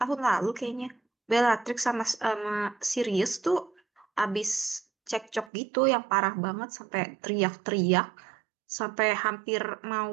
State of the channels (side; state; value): left; drops out; at 5.5 s